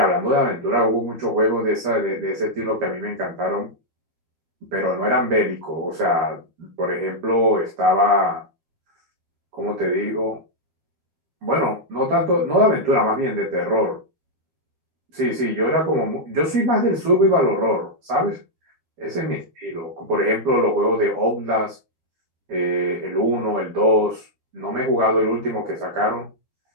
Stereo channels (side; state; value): left; late; 12 ms